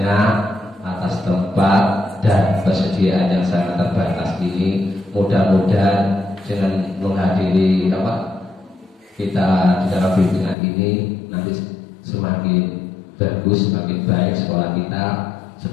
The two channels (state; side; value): drops out; right; at 10.6 s